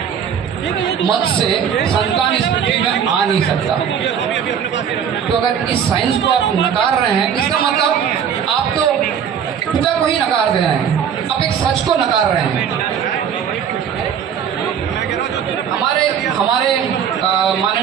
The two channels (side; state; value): left; quieter; 8.0 dB